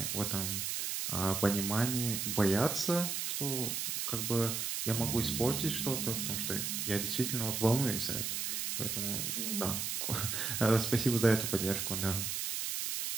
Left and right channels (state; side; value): noise; right; hiss, 1 dB below the sound